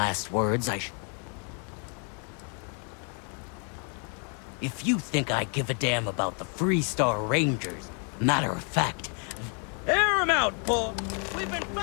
words If you think I give a damn about the Freestar Rangers, matter of fact, air him out, Paul! We've been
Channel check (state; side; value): quieter; right; 39.8 dB